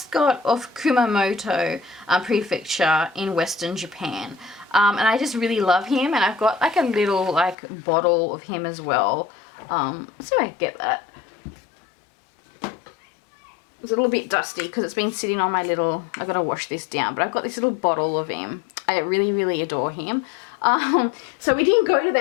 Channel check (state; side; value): drops out; right; at 7.6 s